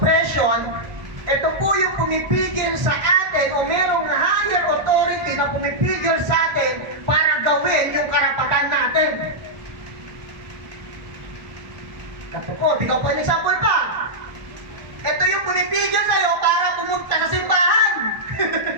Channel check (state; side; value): late; left; 1.1 ms